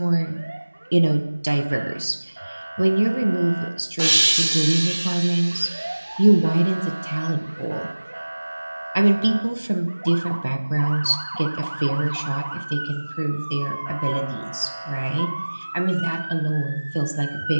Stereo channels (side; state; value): both; inverted; correlation -1.00